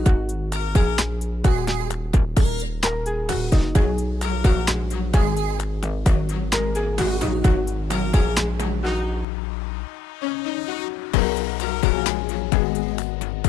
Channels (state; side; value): drops out; right; at 9.2 s